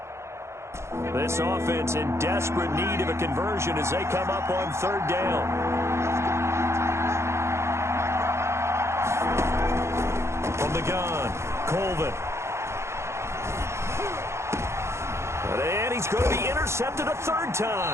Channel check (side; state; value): left; late; 0.13 ms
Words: This offense in desperate need of a conversion as they come up on 3rd down. From the gun, Colvin. And he's going to be intercepted a 3rd